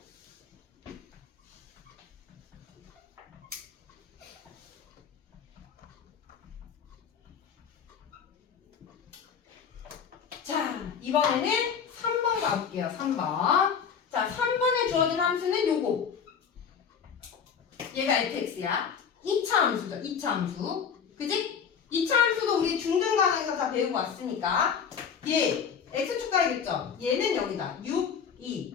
자, 이번에는 3번 가볼게요. 3번. 자, 3번에 주어진 함수는 요거. 얘가 fx야. 2차 함수죠. 2차 함수. 그지? 2차 함수도 우리 중등간에서 다 배우고 왔으니까 얘 x축과의 교점. 얘는 여기다. 6,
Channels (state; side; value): quieter; right; 7.0 dB